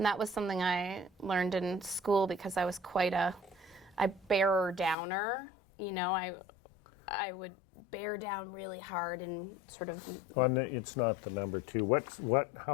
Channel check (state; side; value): drops out; right; at 5.0 s